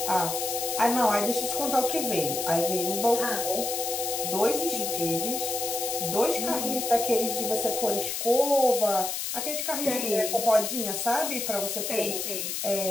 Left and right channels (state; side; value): noise; left; hiss, 3 dB below the sound